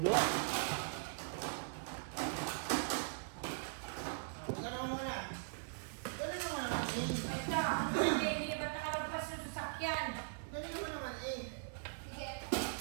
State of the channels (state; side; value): silent; left; digital silence